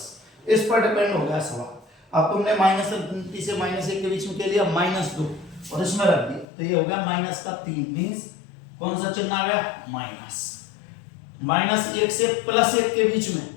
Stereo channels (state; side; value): drops out; right; at 6.5 s